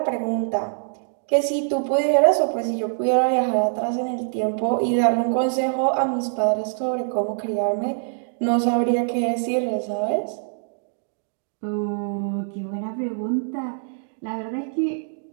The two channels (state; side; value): silent; left; digital silence